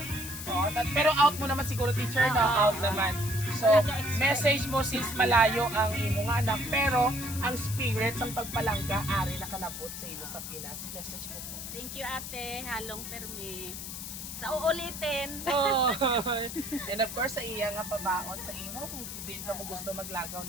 Pero out mo naman siguro, teacher, na out naman. So, message mo since malayo ang imo nga anak, pero ang spirit ang pagpalangga, ari na kanabot sa imo sa Pinas. Message mo po. Thank you, ate. Halong permi. Sa uulitin. Oh. And of course, sa iya nga pabaon sa imo, kung hindi na mo gusto maglagaw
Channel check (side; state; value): left; noise; hiss, 8 dB below the sound